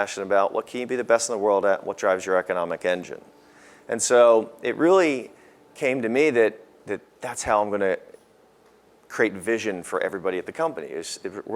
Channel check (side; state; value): both; identical; correlation 1.00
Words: about? What can you be the best in the world at? What drives your economic engine? And so it really came to me that's how I'm going to create vision for everybody at the company. We're